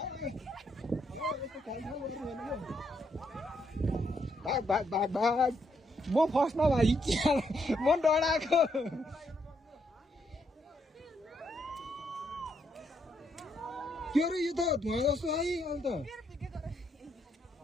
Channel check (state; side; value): normal; both; correlation 0.76